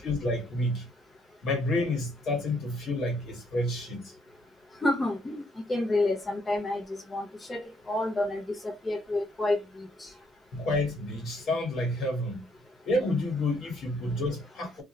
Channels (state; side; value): normal; both; correlation 0.70